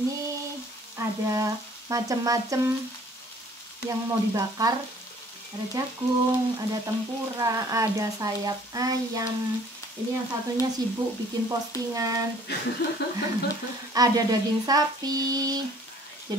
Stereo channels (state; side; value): normal; both; correlation 0.55